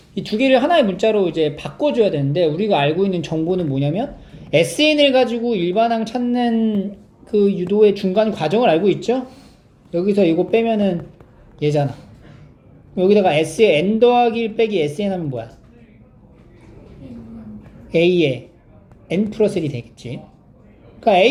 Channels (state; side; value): identical; both; correlation 1.00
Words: 이 두 개를 하나의 문자로 이제 바꿔줘야 되는데 우리가 알고 있는 정보는 뭐냐면 SN을 가지고 일반항 찾는 그 유도의 중간 과정을 알고 있죠? 여기서 이거 빼면은 얘잖아. 여기다가 S에 N 더하기 1 빼기 SN 하면 뭐야? A에 N 플러스 1이 되겠지. 그러니까